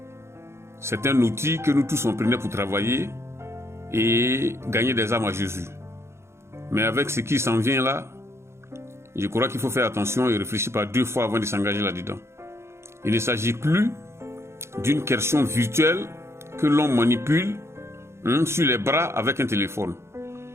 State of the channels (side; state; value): left; late; 0.13 ms